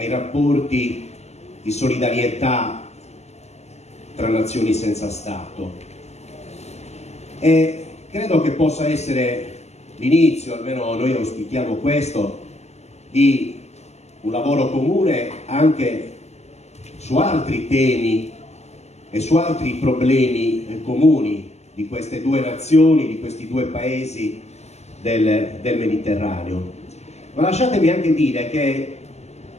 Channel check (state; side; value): late; right; 0.32 ms